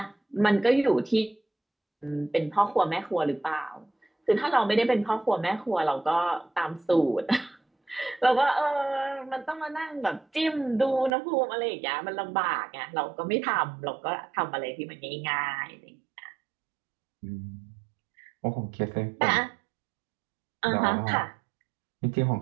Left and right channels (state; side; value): drops out; left; at 11.1 s